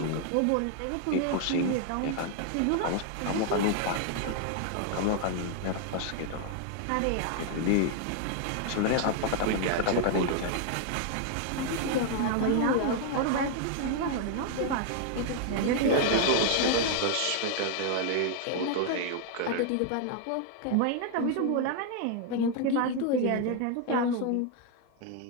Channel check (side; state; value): both; different; correlation 0.00